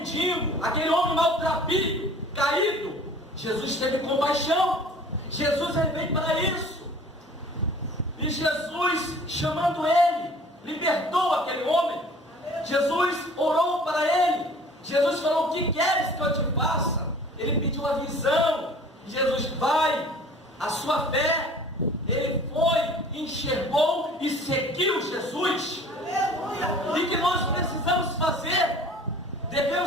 aquele homem maltrapilho, caído. Jesus teve compaixão. Jesus, ele veio para isso. E Jesus, chamando ele, libertou aquele homem. Jesus orou para ele. Jesus falou: o que queres que eu te faça? Ele pediu a visão. Jesus: vai, a sua fé. Ele foi, enxergou e seguiu Jesus. E que nós precisamos fazer?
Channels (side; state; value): both; normal; correlation 0.48